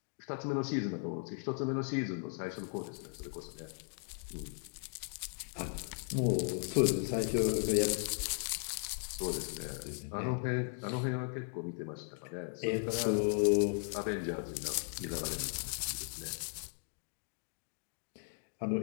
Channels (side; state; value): right; silent; 53 dB below the other